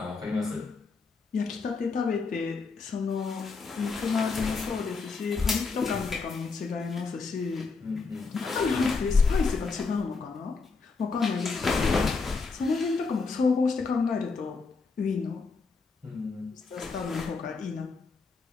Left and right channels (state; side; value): quieter; right; 4.4 dB